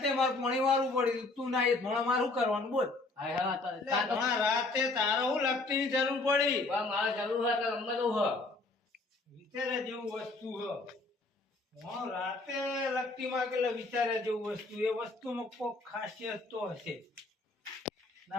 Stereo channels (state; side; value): quieter; right; 3.3 dB